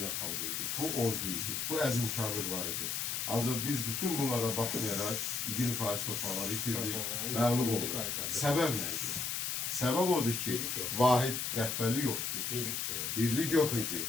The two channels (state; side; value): noise; left; hiss, 1 dB below the sound